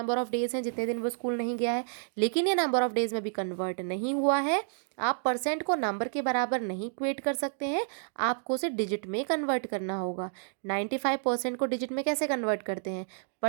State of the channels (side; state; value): left; silent; digital silence